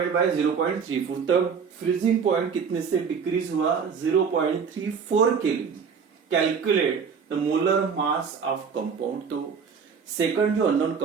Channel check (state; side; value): quieter; left; 6.2 dB